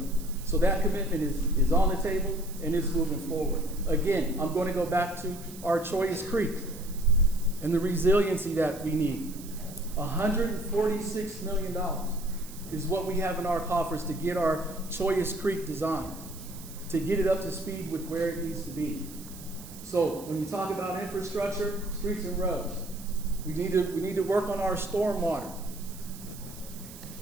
So that commitment is on the table and it's moving forward. Again, I'm going to go back to our Choyas Creek and the resiliency that we need. $146 million is what we have in our coffers to get our Choyas Creek designed, to get it up to speed with where it needs to be. So when you talk about infrastructure, streets and roads, we need to work on our stormwater.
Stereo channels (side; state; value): right; noise; hiss, 16 dB below the sound